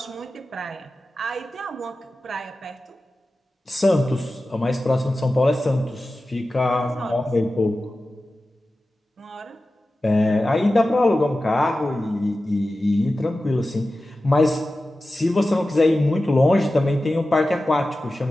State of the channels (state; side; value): normal; both; correlation 0.94